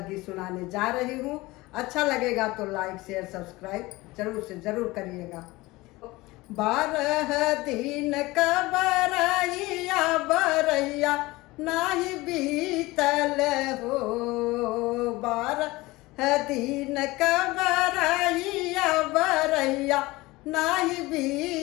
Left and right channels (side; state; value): right; quieter; 20.7 dB